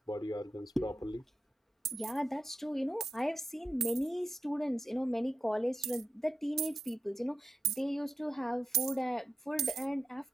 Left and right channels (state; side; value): normal; both; correlation 0.89